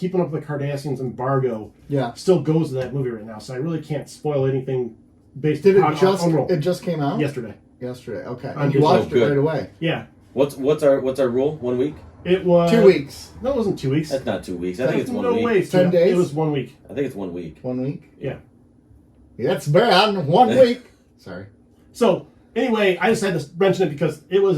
Up with the Cardassians embargo, still goes to that movie right now. So I really can't spoil anything based on it just came out yesterday. Okay, And you watched it right away. Yeah. What's our rule? 1 week? It was 2 weeks. No, it wasn't 2 weeks. That's not 2 weeks. I think it's 1 week. No way. 10 days. It was 1 week. I think it's 1 week. 1 week. Yeah. That's bad. 1 week. Sorry. So anyway, I just had to mention it because it was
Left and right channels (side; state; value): both; identical; correlation 1.00